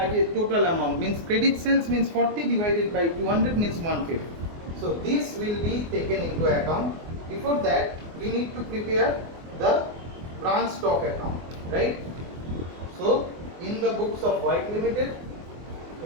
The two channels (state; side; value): late; left; 24 ms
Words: total amount means credit sales means 40 divided by 200 means 150. So this will be taken into account. Before that, we need to prepare the branch stock account, right? So in the books of White Limited,